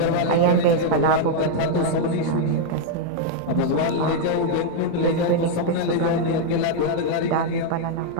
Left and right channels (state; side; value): different; both; correlation 0.00